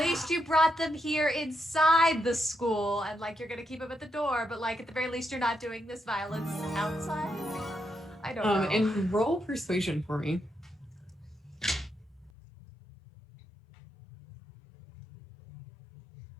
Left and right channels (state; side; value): drops out; right; at 12.3 s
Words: you brought them here inside the school, and like you're gonna keep them at the door, but like at the very least you're not doing this violence outside. I don't know. And roll persuasion for me.